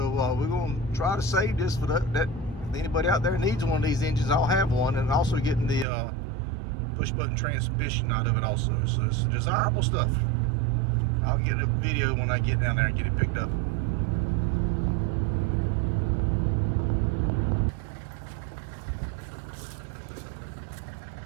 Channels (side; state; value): left; drops out; at 5.9 s